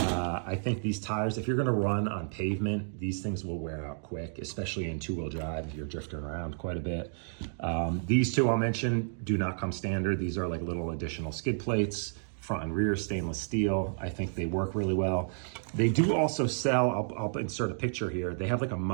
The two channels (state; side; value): silent; left; digital silence